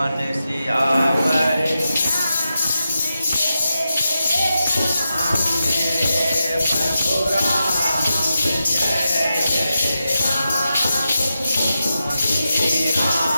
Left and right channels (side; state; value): both; inverted; correlation -0.88